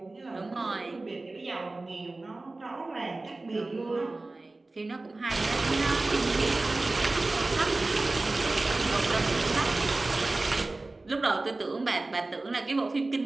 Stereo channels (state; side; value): quieter; left; 3.1 dB